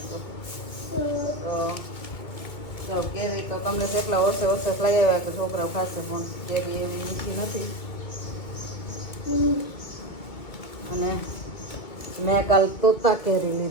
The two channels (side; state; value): right; late; 2.2 ms